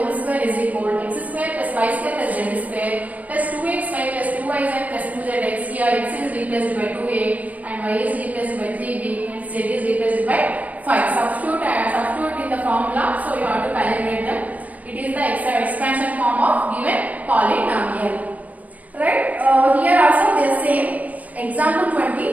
square is equal to x square plus y square plus z square plus 2xy plus 2yz plus 2zx. Here x is replaced by 2a and y is replaced by 3b and z is replaced by 5. Substitute in the formula, so you have to calculate them. It is the expansion form of given polynomial. Right? Here also they are same. Example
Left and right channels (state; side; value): late; left; 0.075 ms